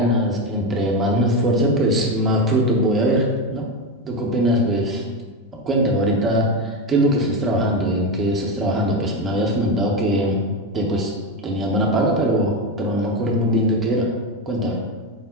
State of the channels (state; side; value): normal; both; correlation 0.14